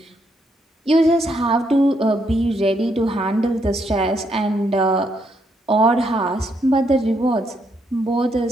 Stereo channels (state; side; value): normal; both; correlation 0.76